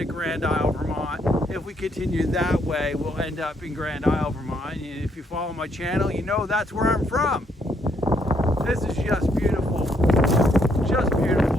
Grand Isle, Vermont. If we continue that way, we'll end up in Grand Isle, Vermont. And if you follow my channel, you know that's where I'm from. This is just beautiful, just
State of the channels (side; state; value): both; normal; correlation 0.72